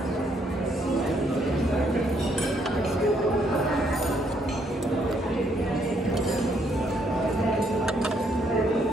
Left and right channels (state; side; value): normal; both; correlation 0.71